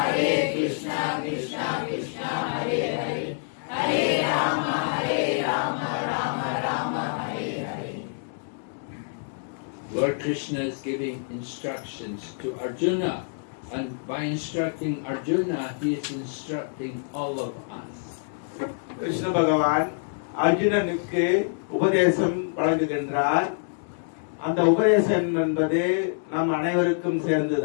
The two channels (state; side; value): silent; right; digital silence